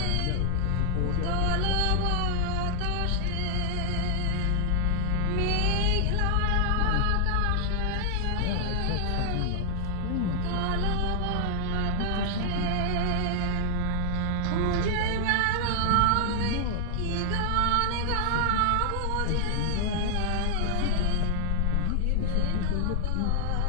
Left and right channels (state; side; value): different; both; correlation -0.01